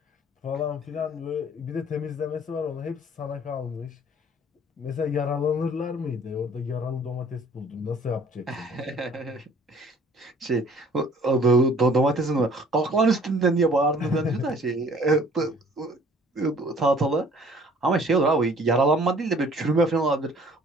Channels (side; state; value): both; normal; correlation 0.54